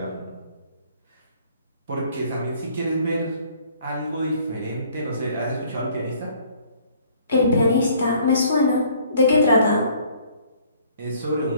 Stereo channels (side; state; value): both; inverted; correlation -0.58